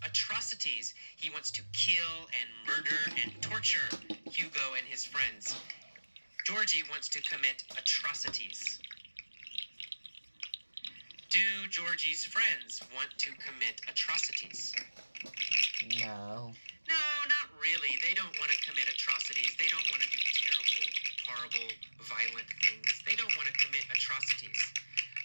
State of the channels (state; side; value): inverted; both; correlation -1.00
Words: atrocities. He wants to kill and murder and torture Hugo and his friends. Georgie wants to commit atrocities. Do Georgie's friends want to commit atrocities? No. No, not really. They don't want to commit atrocities. They don't want to do terrible, horrible, violent things. They don't want to commit atrocities.